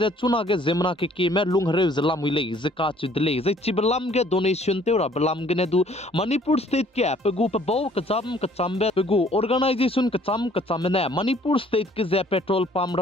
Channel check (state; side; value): normal; both; correlation 0.58